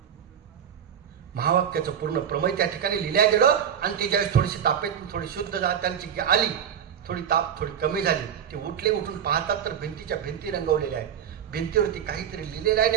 महावाक्याचं पूर्ण प्रमेय त्या ठिकाणी लिहिल्या गेलं आणि ती ज्यावेळेस थोडीशी तापेत थोडी शुद्ध त्यांची आली, थोडी ताप थोडी कमी झाली, ते उठून पाहतात तर भिंतीच्या भिंती रंगवलेल्या आहेत. भिंतीवरती काहीतरी लिहिलेलं आहे.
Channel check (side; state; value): left; quieter; 8.7 dB